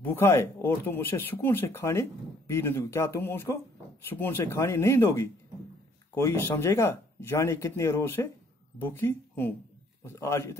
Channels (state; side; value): normal; both; correlation 0.62